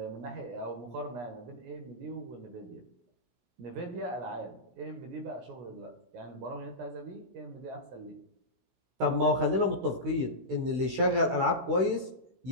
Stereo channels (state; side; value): late; left; 16 ms